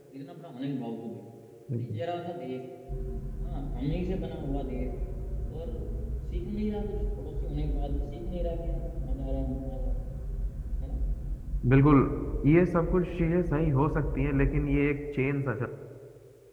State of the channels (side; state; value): both; identical; correlation 1.00